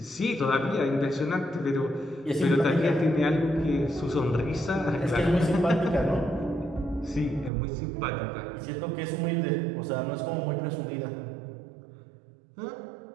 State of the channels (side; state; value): left; drops out; at 7.5 s